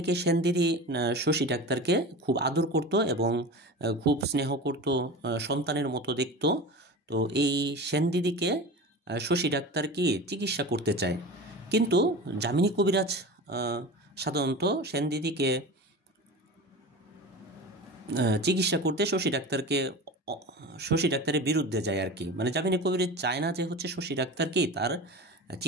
সেনদিদি শশী ডাক্তারকে খুব আদর করত এবং খুব স্নেহ করত, সন্তানের মতো দেখত। তো এই সেনদিদিকে শশী ডাক্তার কি চিকিৎসা করতে চায়, কিন্তু যামিনী কবিরাজ সাধারণত সেনদিদিকে চিকিৎসা করতে শশী ডাক্তারের বিরুদ্ধে যায় আর কি, মানে যামিনী কবিরাজ চায় না যে হচ্ছে শশী ডাক্তার কি তার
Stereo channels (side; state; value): both; normal; correlation 0.31